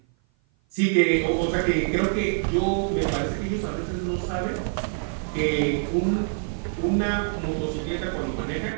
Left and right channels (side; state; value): left; silent; 56 dB below the other